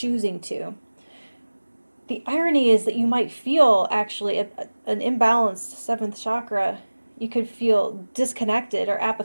to. The irony is that you might feel actually an imbalanced seventh chakra. You could feel disconnected or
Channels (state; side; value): inverted; both; correlation -1.00